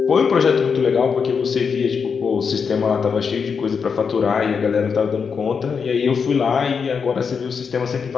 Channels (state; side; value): quieter; right; 6.0 dB